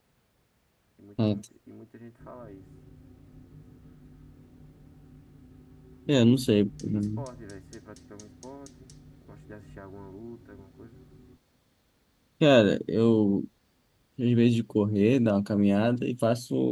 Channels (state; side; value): identical; both; correlation 1.00